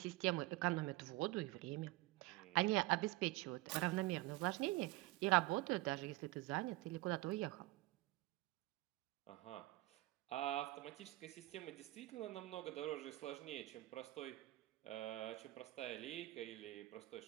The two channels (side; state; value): left; quieter; 19.5 dB